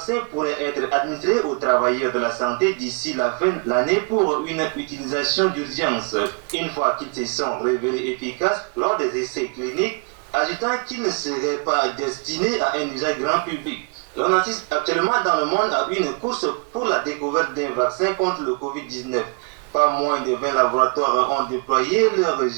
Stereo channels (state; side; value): quieter; left; 35.8 dB